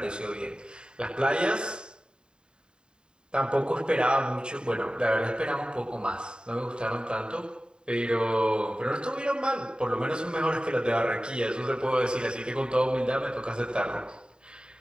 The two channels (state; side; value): late; left; 0.049 ms